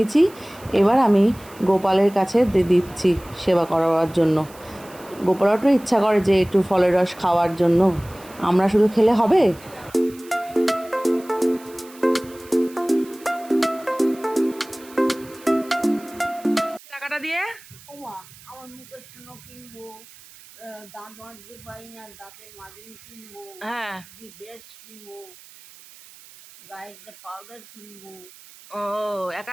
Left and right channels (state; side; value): noise; right; hiss, 22 dB below the sound